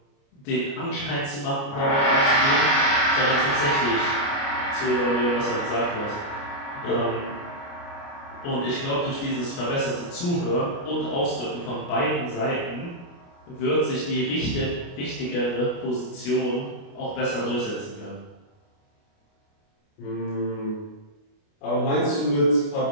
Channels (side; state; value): right; late; 29 ms